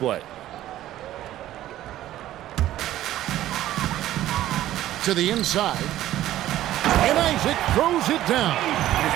To the inside. And Isaac throws it down.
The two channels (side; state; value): left; quieter; 13.7 dB